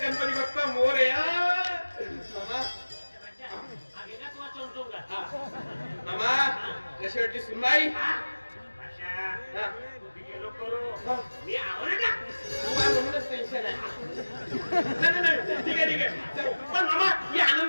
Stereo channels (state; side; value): inverted; both; correlation -1.00